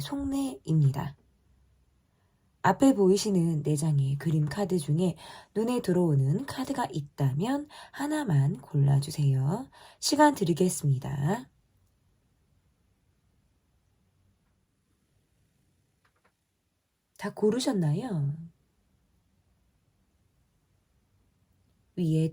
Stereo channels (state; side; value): identical; both; correlation 1.00